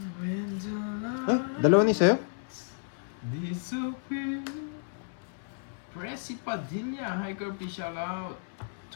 Ha? Dalawa ni sa'yo? Disappear. Pressy Padilla, hi Kirby, shout out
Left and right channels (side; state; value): right; silent; 57 dB below the other